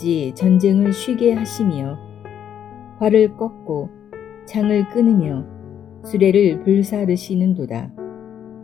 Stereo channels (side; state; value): right; quieter; 9.4 dB